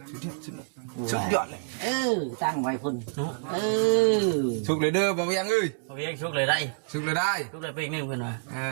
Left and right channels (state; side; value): silent; left; digital silence